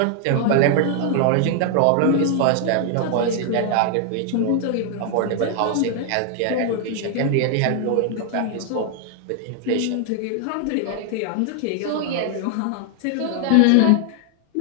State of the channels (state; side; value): different; both; correlation 0.00